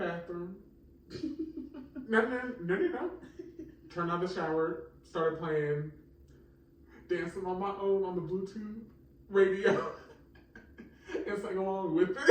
No. Turned on the shower. Started playing. Dancing on my own on the Bluetooth radio. And sang along with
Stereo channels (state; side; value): identical; both; correlation 1.00